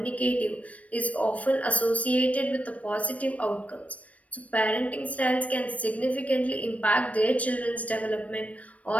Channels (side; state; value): right; late; 0.066 ms